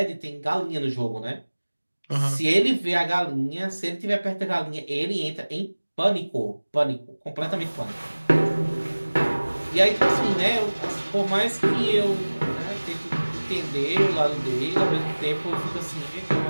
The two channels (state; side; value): inverted; both; correlation -1.00